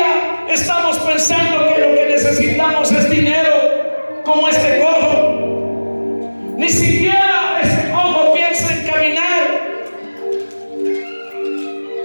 estamos pensando que lo que necesitamos es dinero, como este cojo. Ni siquiera este cojo piensa en caminar.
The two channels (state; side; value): inverted; both; correlation -1.00